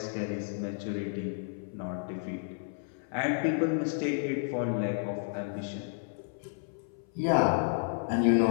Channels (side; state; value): right; silent; 57 dB below the other